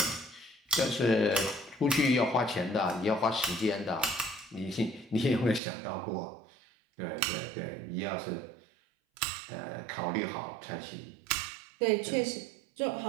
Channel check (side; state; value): left; drops out; at 5.6 s